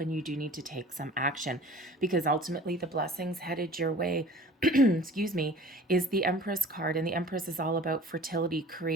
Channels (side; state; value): both; normal; correlation 0.45